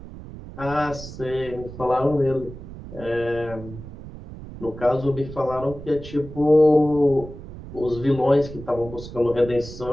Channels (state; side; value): noise; right; rumble, 13 dB below the sound